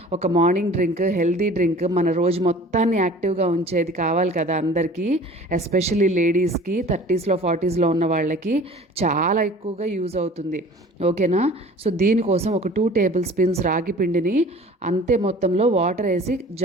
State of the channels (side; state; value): both; normal; correlation 0.45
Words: ఒక మార్నింగ్ డ్రింక్, హెల్తీ డ్రింక్ మన రోజు మొత్తాన్ని యాక్టివ్గా ఉంచేది కావాలి కదా అందరికీ. ఎస్పెషల్లీ లేడీస్కి, 30స్లో 40స్లో ఉన్న వాళ్ళకి చాలా ఎక్కువగా యూజ్ అవుతుంది. ఓకేనా? సో దీనికోసం ఒక 2 టేబుల్ స్పూన్స్ రాగి పిండిని అంతే మొత్తంలో వాటర్ వేసి